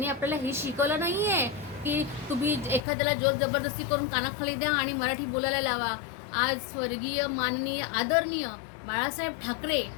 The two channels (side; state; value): right; drops out; at 2.8 s